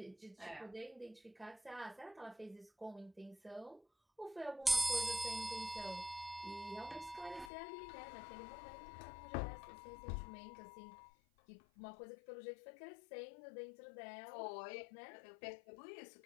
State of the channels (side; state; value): right; drops out; at 7.5 s